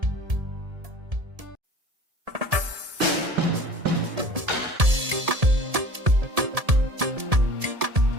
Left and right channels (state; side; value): late; left; 1.7 ms